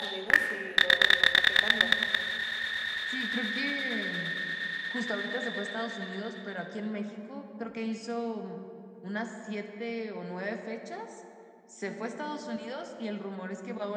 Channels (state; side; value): identical; both; correlation 1.00